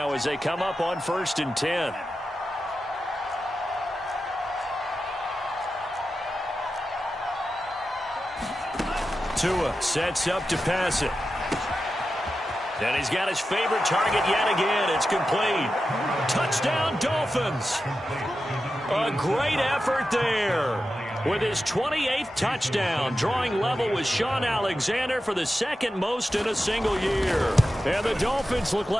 as they come up on 1st and 10. Tua sets up to pass it. And he's got his favorite target yet again. It's complete. Touchdown, Dolphins. A great effort there. With his 28th touchdown, drawing level with Sean Alexander for the 2nd most in a single year. And the Dolphins look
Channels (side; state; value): both; normal; correlation 0.91